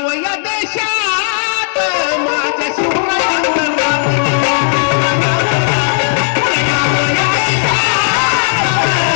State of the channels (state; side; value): silent; right; digital silence